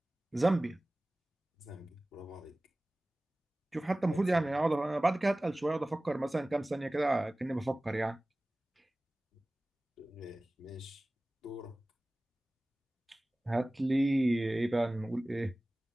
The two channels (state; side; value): normal; both; correlation 0.98